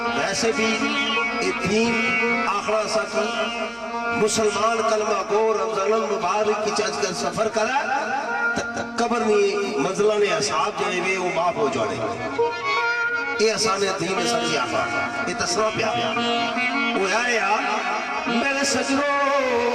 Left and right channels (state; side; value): identical; both; correlation 1.00